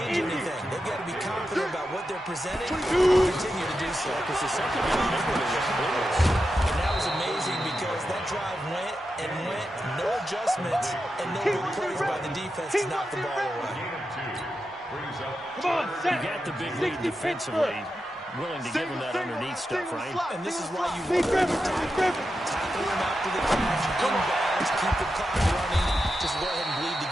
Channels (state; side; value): normal; both; correlation 0.89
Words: anything? They've got to be confident about what they're presenting and continue to do so. Because the second half was And that was amazing, because that drive went, no adjustments, and no good plays by the defense to knock the ball away. Come on, set. You got the big lead defensively. Willing to give him that underneath stuff, right? And this is why you want to tackle him after the catch, inbounds, keep the clock running, just go ahead and bleed the